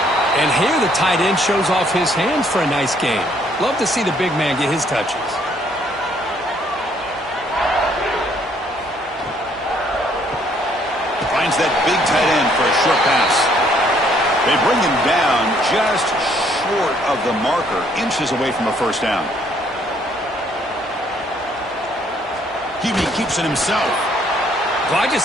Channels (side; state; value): both; normal; correlation 0.65